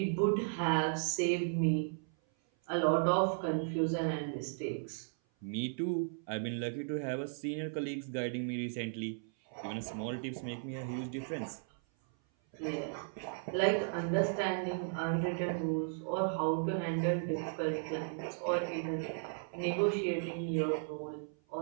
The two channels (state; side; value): silent; left; 54 dB below the other